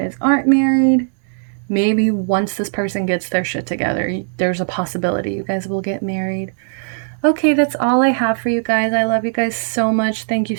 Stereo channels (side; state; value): left; silent; 67 dB below the other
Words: aren't married, maybe once this person gets their shit together, there's a possibility you guys will get married. Okay, that's all I have for you guys. I love you guys so much. Thank you